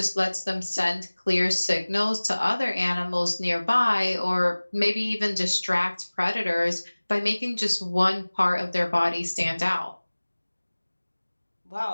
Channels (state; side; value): inverted; both; correlation -1.00